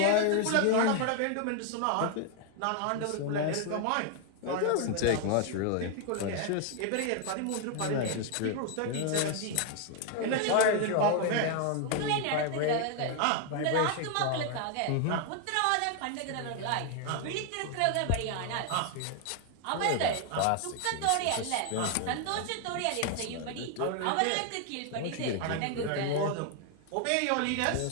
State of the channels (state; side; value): different; both; correlation 0.00